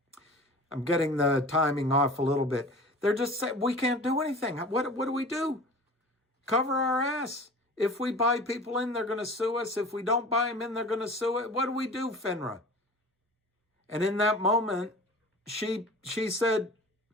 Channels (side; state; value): both; normal; correlation 0.40